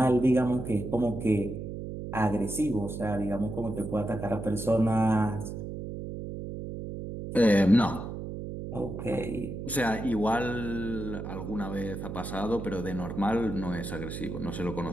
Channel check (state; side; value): noise; right; hum, 7 dB below the sound